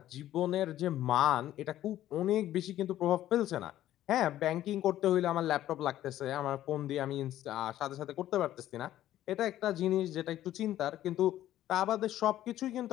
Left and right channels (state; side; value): quieter; right; 13.1 dB